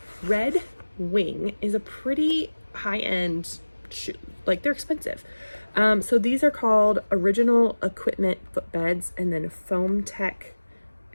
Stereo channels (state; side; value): inverted; both; correlation -1.00